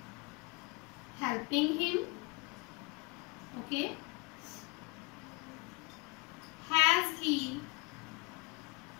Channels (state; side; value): quieter; right; 27.7 dB